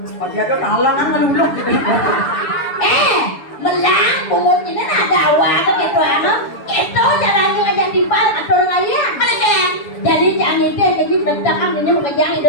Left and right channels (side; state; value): right; late; 6.9 ms